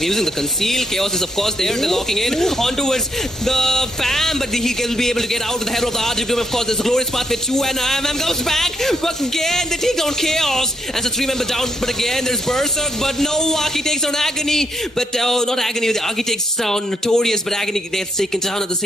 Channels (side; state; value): both; normal; correlation 0.76